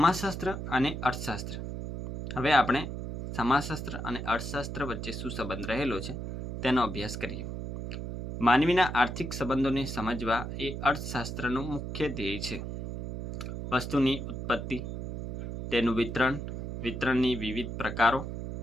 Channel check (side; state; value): right; noise; hum, 6 dB below the sound